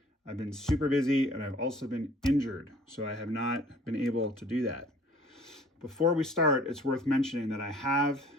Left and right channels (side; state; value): both; normal; correlation 0.53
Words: I've been super busy and I've also been injured, so I have not been able to do that. Before we start, it's worth mentioning that I have